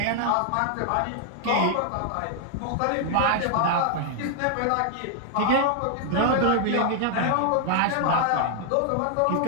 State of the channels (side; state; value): both; different; correlation 0.00